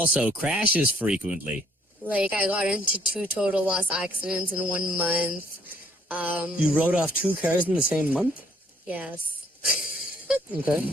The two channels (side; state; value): both; normal; correlation 0.64